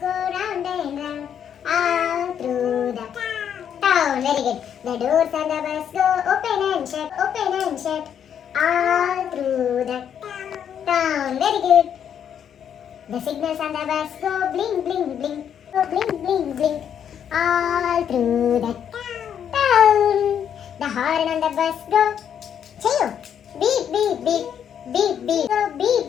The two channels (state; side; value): quieter; right; 8.7 dB